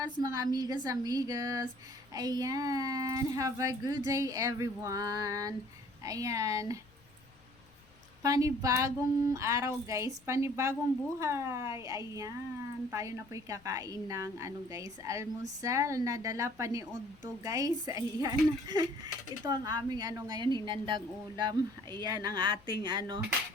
mga amigas. Ayan, have a good day everyone. Ayan, panibagong araw guys, panibagong buhay. Ayan, tayo na po'y kakain ng guys, almusal na dala pa ni Udto guys. Ayan, ito ang aming ngayon hinandang ulam. Ayan, ang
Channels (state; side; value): noise; left; rumble, 28 dB below the sound